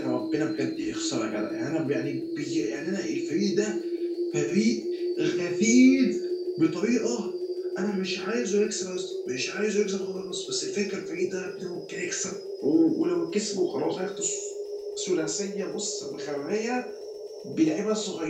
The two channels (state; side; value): identical; both; correlation 1.00